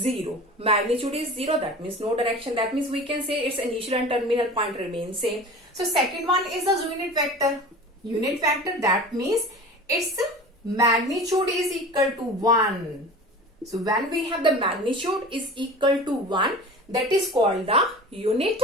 Magnitude is 0, that means no direction. That means we can say its initial and terminal point remain same. So second one is the unit vector. Unit vector, that means its magnitude is equal to 1. So when we have the magnitude is equal to 1, that is called the unit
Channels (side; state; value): both; normal; correlation 0.37